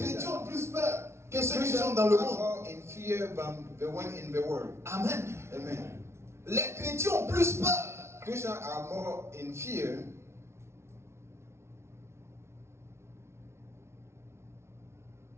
chrétiens that. ont plus peur que ceux qui Christians sont dans le are monde. more in fear than the one in the world. Amen. Amen. Les chrétiens ont plus peur. Christians are more in fear.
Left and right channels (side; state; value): left; late; 0.13 ms